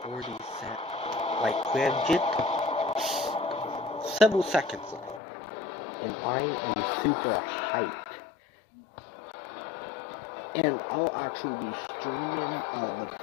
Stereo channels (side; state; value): right; drops out; at 5.2 s